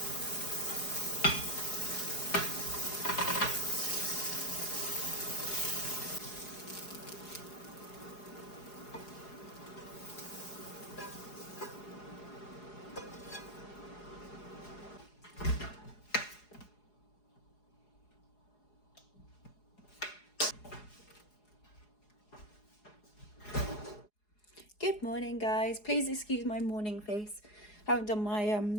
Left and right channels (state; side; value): late; right; 4.8 ms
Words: Good morning, guys. Please excuse my morning face. Haven't done my